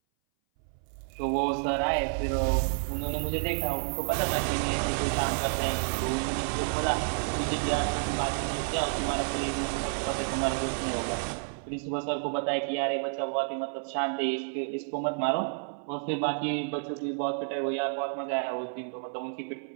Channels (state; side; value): silent; left; 58 dB below the other